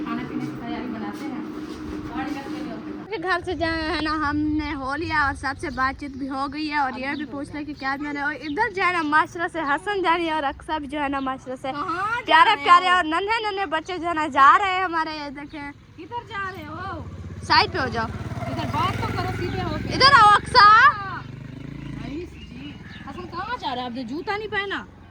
खाने पीने की तैयारी बनाते हैं। घर से जाए है ना, हमने हो लिया और सबसे बातचीत भी हो गई है, और ये भी पूछ लिया कि क्या मैंने, और इधर जो है ना माशरा से हसन जा रही है, और अक्सा भी जो है ना माशरा से प्यारे प्यारे और नन्हे नन्हे बच्चे जो है ना जा रहे हैं हमारे। ये देखें, किधर जा रहे हो? साइड पे हो जाओ, इधर बात तो करो, सीधे हो के। इधर आओ अक्सा। हसन कहाँ जा रहा है? आपने जूता नहीं पहना?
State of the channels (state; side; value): identical; both; correlation 1.00